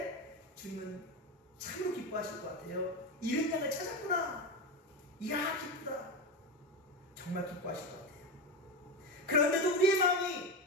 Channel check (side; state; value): both; normal; correlation 0.17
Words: 주님은 참으로 기뻐하실 것 같아요. 잃은 양을 찾았구나. 이야, 기쁘다. 정말 기뻐하실 것 같아요. 그런데도 우리의 마음이